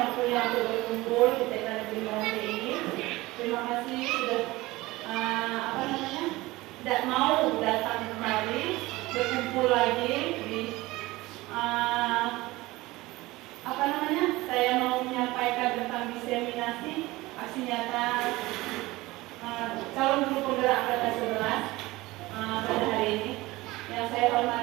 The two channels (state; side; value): quieter; left; 19.9 dB